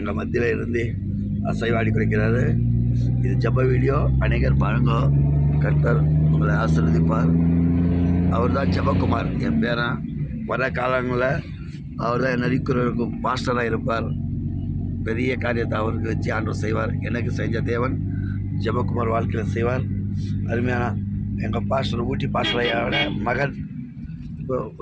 மத்தியில் இருந்து அசைவாடி குறைக்கிறாரு. இது ஜெப வீடியோ. அநேகர் பாருங்க. கர்த்தர் உங்களை ஆசீர்வதிப்பார். அவர் தான் ஜெபக்குமார், என் பேரன். வர காலங்களில் அவர் தான் நரிக்குறவருக்கும் பாஸ்டராக இருப்பார். பெரிய காரியத்தை அவருக்கு வச்சு ஆண்டவர் செய்வார். எனக்கு செஞ்ச தேவன் ஜெபக்குமார் வாழ்க்கையில் செய்வார். அருமையான எங்கள் பாஸ்டர் ஊட்டி பாஸ்டரையோட மகன் இப்போ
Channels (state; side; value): identical; both; correlation 1.00